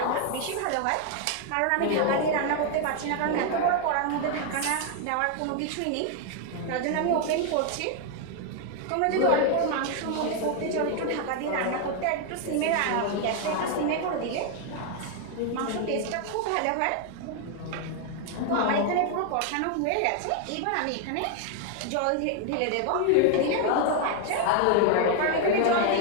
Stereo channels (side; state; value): both; different; correlation 0.00